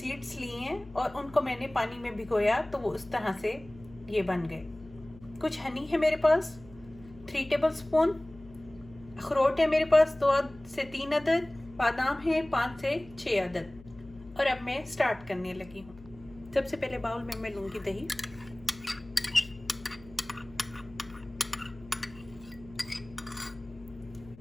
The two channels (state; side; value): noise; left; hum, 20 dB below the sound